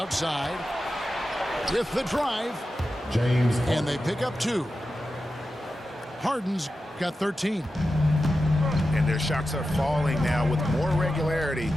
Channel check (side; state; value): both; normal; correlation 0.91